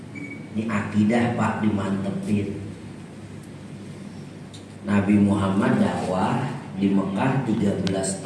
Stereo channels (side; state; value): both; identical; correlation 1.00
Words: Ini akidah Pak dimantepin. Nabi Muhammad dakwah di Mekah 13